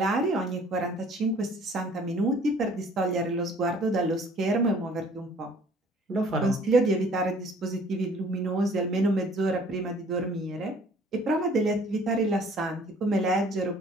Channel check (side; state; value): both; normal; correlation 0.54